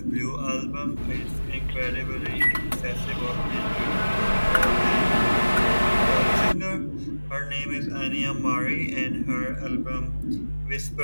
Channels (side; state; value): both; inverted; correlation -1.00